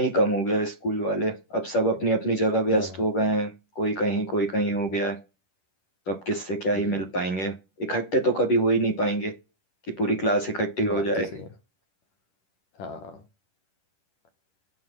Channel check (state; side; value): late; right; 10 ms